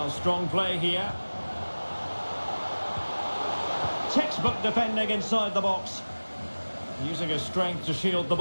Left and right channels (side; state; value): both; inverted; correlation -1.00